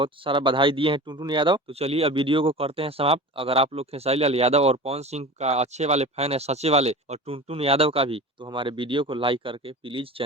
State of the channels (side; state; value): both; normal; correlation 0.34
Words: सारा बधाई दिए हैं टुनटुन यादव। तो चलिए, अब वीडियो को करते हैं समाप्त। अगर आप लोग खेसारी लाल यादव और पवन सिंह का अच्छे वाले फैन है, सच्चे वाले, और टुनटुन यादव का भी, तो हमारे वीडियो को लाइक करके प्लीज